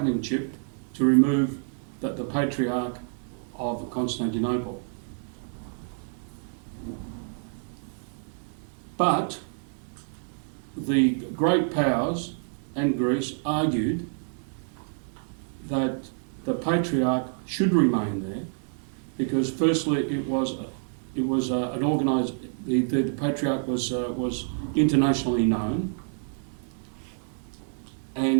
chip, to remove the Patriarch of Constantinople. But the great powers and Greece argued that the Patriarch should remain there because, firstly, it was an organised. The Patriarch was internationally known,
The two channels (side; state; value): left; silent; digital silence